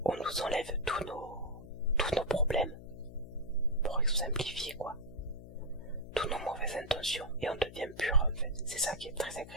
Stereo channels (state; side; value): noise; left; hum, 15 dB below the sound